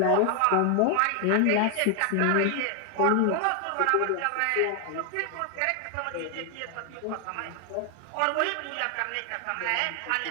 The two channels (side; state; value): both; different; correlation 0.00